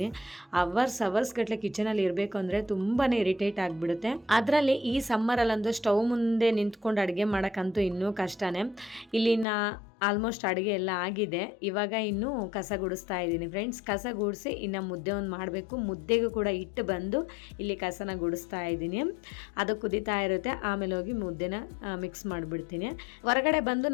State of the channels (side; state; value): right; drops out; at 9.5 s